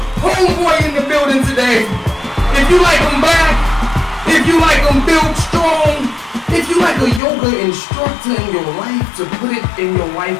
homeboy in the building today. If you like them black, if you like them built strong, if you like a yoga instructor in your life to put it in your life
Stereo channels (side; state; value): right; drops out; at 7.2 s